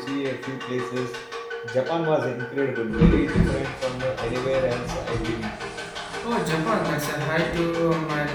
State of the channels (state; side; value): identical; both; correlation 1.00